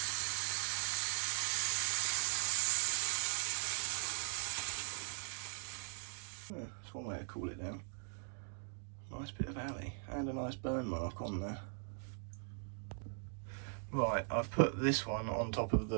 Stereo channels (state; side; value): silent; left; 51 dB below the other